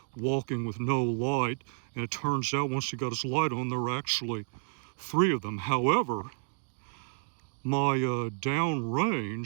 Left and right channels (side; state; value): left; silent; digital silence